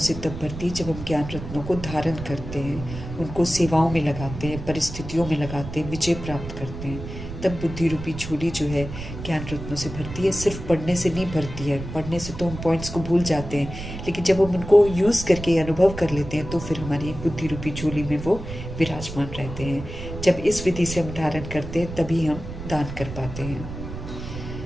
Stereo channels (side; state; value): right; noise; rumble, 9 dB below the sound